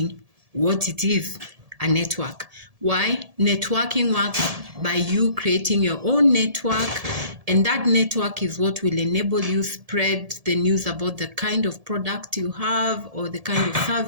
what it is, a network. Why? Networking works by you creating your own network, and that network is what will enable you spread the news about the kind of product you have or the kind of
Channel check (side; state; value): left; late; 1.7 ms